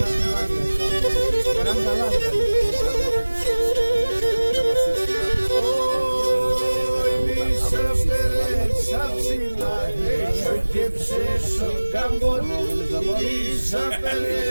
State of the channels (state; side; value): inverted; both; correlation -1.00